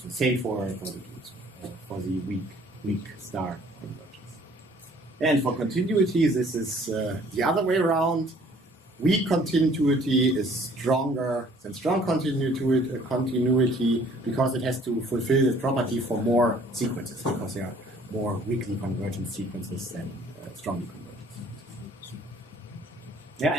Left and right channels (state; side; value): normal; both; correlation 0.57